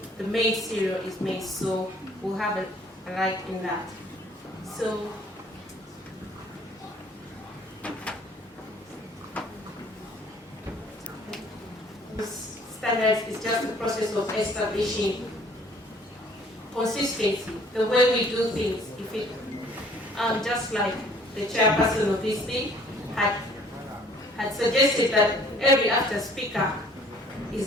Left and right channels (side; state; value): both; normal; correlation 0.56